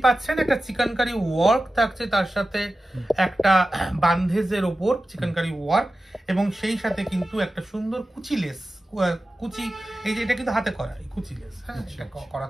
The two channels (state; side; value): normal; both; correlation 0.94